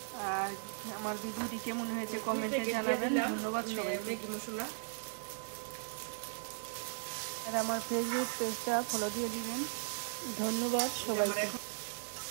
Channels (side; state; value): left; silent; digital silence